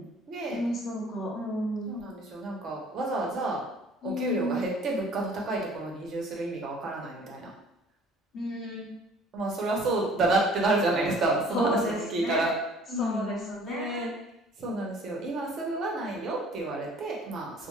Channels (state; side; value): normal; both; correlation 0.52